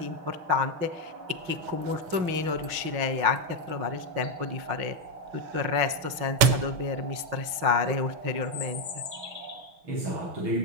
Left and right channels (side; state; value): left; late; 6.2 ms